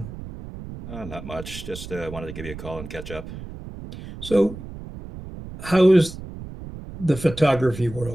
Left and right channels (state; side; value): noise; right; rumble, 12 dB below the sound